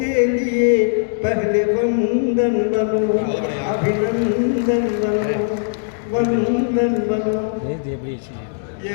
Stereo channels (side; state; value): right; silent; digital silence